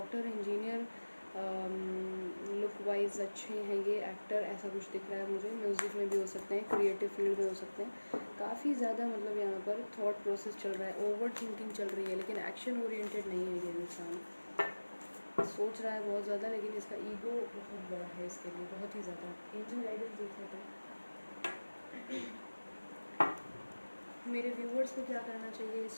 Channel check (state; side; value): inverted; both; correlation -1.00